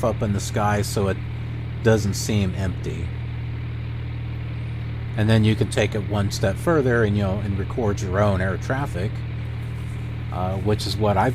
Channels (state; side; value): identical; both; correlation 1.00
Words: up in the sky so it doesn't seem empty. And then you can take it one step further and and record your own air traffic, which is what